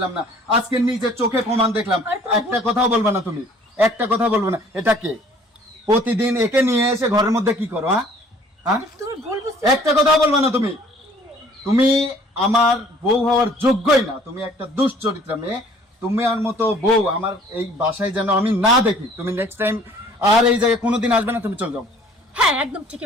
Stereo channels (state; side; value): normal; both; correlation 0.55